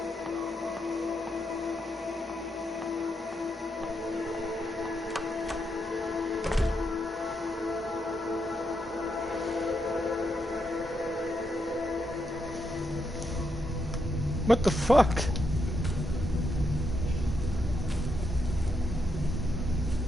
What the fuck?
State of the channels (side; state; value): both; normal; correlation 0.81